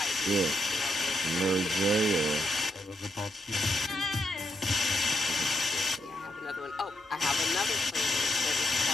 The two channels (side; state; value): both; normal; correlation 0.80